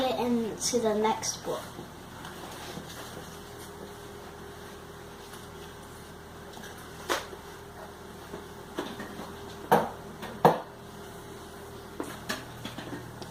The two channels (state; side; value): identical; both; correlation 1.00